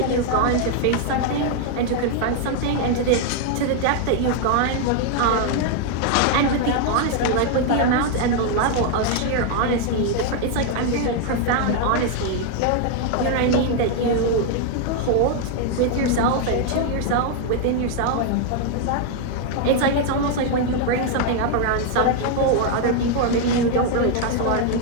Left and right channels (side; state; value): both; different; correlation 0.00